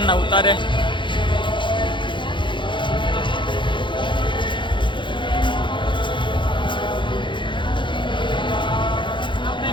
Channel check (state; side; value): late; right; 0.23 ms